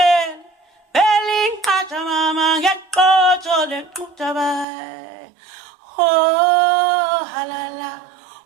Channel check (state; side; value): drops out; left; at 4.7 s